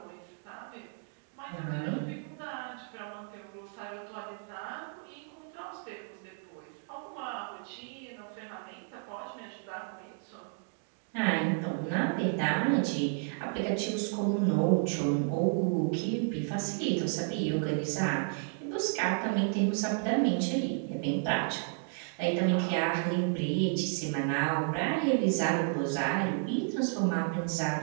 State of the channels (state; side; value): silent; left; 56 dB below the other